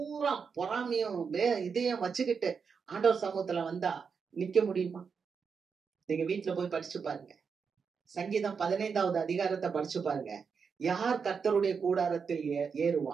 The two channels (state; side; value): quieter; left; 5.9 dB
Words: பொறாமையும் இதையும் வச்சுக்கிட்டு ஆண்டவர் சமூகத்துல வந்தா நிக்க முடியுமா? நீங்க வீட்டுல போய் படிச்சு பாருங்க. சங்கீதம் 15வது அதிகாரத்தை படிச்சு பாருங்க. யார் கர்த்தருடைய கூடாரத்தில்